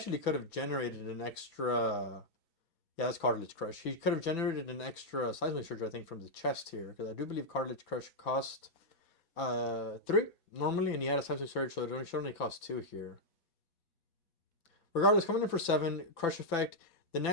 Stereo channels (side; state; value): right; late; 4.2 ms